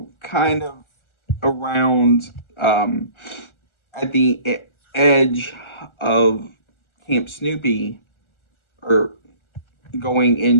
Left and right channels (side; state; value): right; late; 1.4 ms